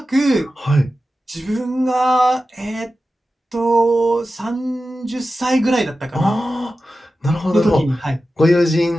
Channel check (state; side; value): normal; both; correlation 0.93